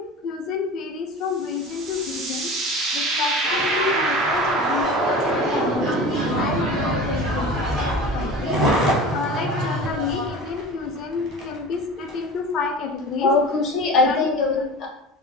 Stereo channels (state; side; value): normal; both; correlation 0.35